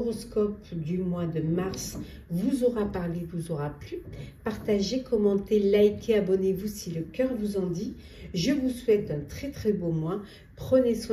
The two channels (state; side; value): identical; both; correlation 1.00